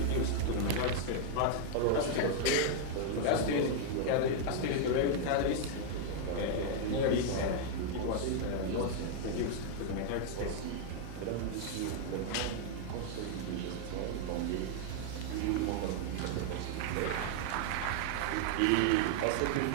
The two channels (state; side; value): different; both; correlation -0.01